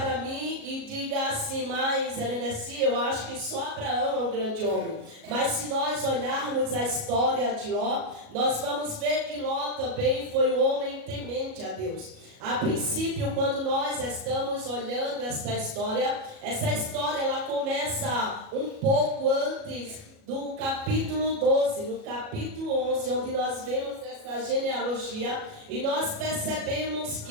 mim e diga assim: mas Helenessi, eu acho que só Abraão é um grande homem. Mas se nós olharmos a história de Ló, nós vamos ver que Ló também foi um homem temente a Deus. A princípio, quando nós estamos olhando essa história ela começa um pouco antes do capítulo 12, no capítulo 11, onde nós vemos essa genealogia, e nós percebemos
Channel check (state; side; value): late; left; 37 ms